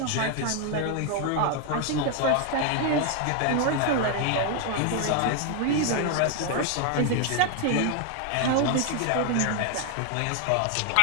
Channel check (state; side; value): different; both; correlation 0.01